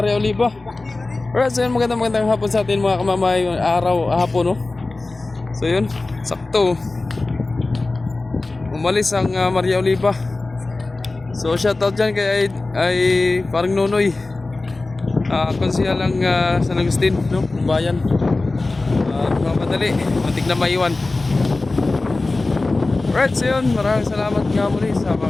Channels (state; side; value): quieter; right; 3.3 dB